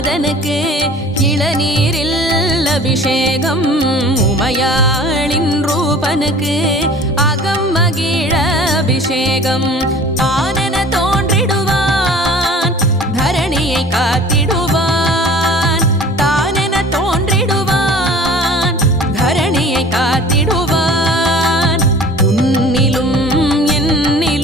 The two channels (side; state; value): both; normal; correlation 0.45